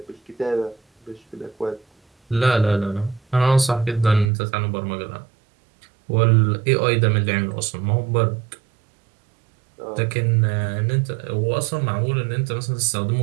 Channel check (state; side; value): drops out; left; at 4.3 s